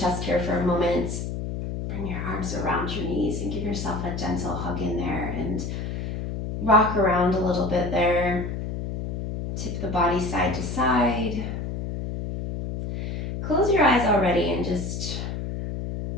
here for a moment. Bring your arms around your knees and give yourself a gentle hug in there and rock around a little bit there. Tip the body side to side. Close your eyes already and just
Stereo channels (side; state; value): left; noise; hum, 4 dB below the sound